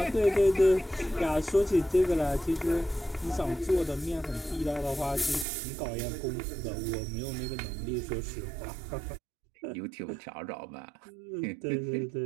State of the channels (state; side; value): drops out; left; at 5.5 s